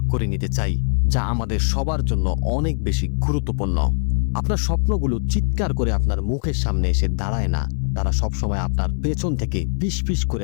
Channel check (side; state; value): right; silent; digital silence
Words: করে নিতে চাই যা আমাদের সবার জন্য অনেক বেশি গুরুত্বপূর্ণ। আপনার স্বপ্নগুলো চিৎকার করে আপনার মুখের সামনে এসে দাঁড়ায় না, তারা সবসময় আপনার পেছন থেকে ফিসফিস করে